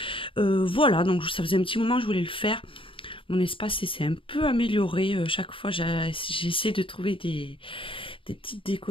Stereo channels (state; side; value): late; right; 0.25 ms